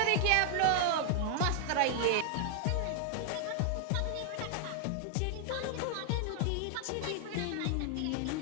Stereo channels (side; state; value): both; different; correlation 0.00